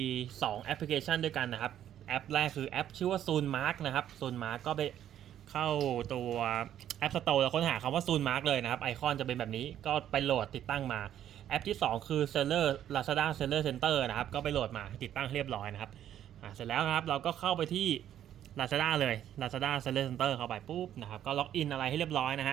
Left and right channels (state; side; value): quieter; left; 10.9 dB